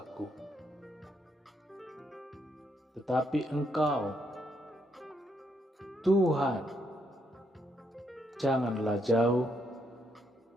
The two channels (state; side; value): normal; both; correlation 0.76